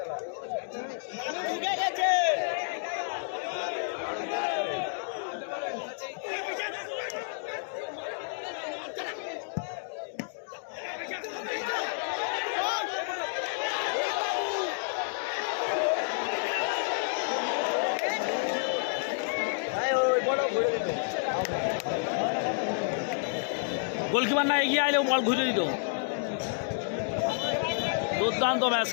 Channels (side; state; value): right; silent; digital silence